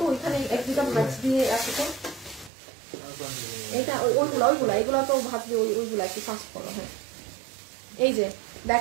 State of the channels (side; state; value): left; drops out; at 2.5 s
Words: ওইখানে 1-2টা ম্যাচ দিয়ে আছে তো। এইটা ওইগুলা এগুলো তো ভাবছি ওইগুলা একটু ফাস্ট করো। হ্যাঁ এই যে